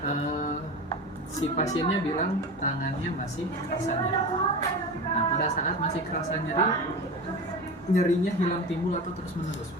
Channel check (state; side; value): normal; both; correlation 0.28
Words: si pasiennya bilang tangannya masih kerasa nyeri. Nah, pada saat masih kerasa nyeri, nyerinya hilang timbul atau terus menerus.